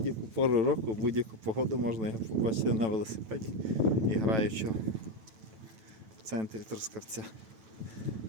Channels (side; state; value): left; late; 9.2 ms